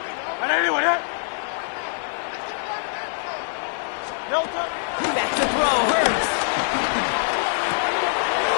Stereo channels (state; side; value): silent; right; 58 dB below the other